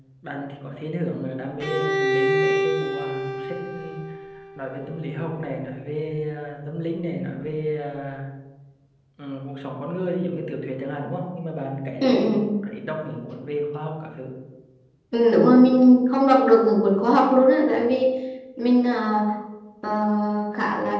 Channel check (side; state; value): both; identical; correlation 1.00